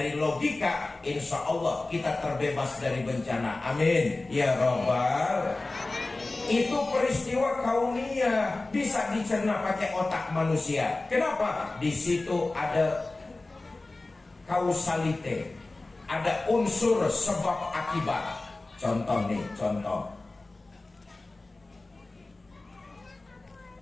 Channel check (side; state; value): right; quieter; 3.1 dB